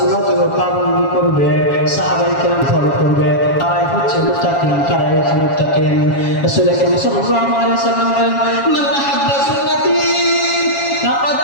পালন করবে সাহাবায়ে কেরাম ফলো করবে তারাই হচ্ছে মুত্তাকিন তারাই হচ্ছে মুত্তাকিন রাসূল সাল্লাল্লাহু আলাইহি ওয়াসাল্লাম মান আহাব্বা সুন্নতি ফাকাদ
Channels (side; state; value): right; late; 7.2 ms